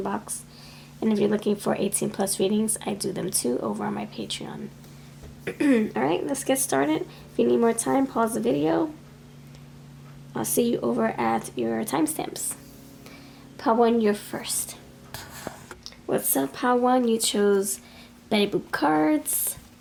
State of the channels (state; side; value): identical; both; correlation 1.00